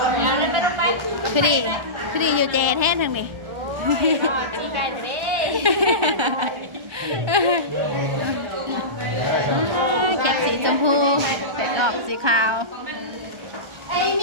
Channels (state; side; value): late; left; 1.3 ms